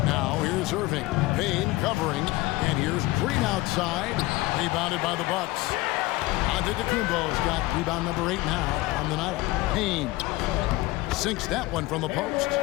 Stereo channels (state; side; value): quieter; right; 19.7 dB